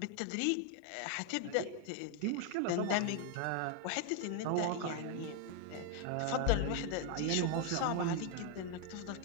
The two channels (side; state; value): both; different; correlation 0.00